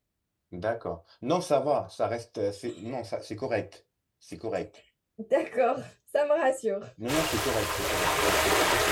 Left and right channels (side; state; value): both; identical; correlation 1.00